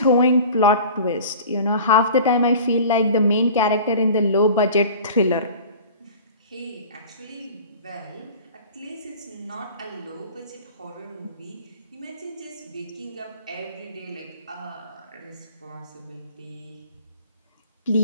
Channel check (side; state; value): both; inverted; correlation -0.41